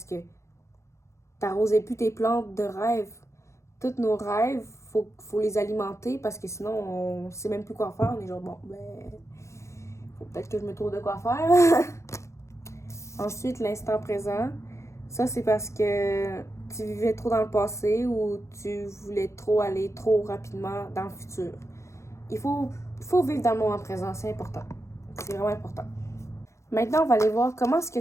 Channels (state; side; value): late; right; 0.14 ms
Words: que t'arrosais plus tes plantes de rêves. Tous nos rêves, faut les alimenter parce que sinon on sait même plus quoi faire. On est genre bon, ben, faut peut-être que je me trouve de quoi faire. Ensuite, l'instant présent. Ça, c'est parce que tu vivais trop dans le passé ou tu voulais trop aller trop rapidement dans le futur. Il faut vivre dans le moment présent, c'est important. C'est vraiment important. Maintenant, on va aller voir comment est-ce que